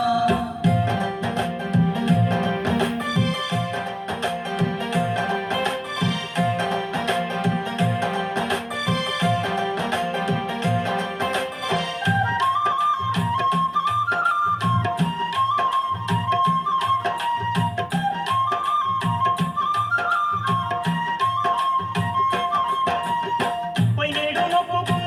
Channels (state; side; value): identical; both; correlation 1.00